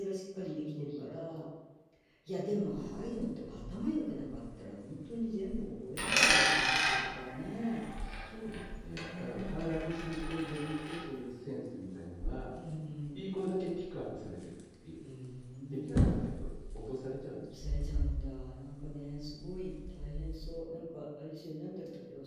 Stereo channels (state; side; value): identical; both; correlation 1.00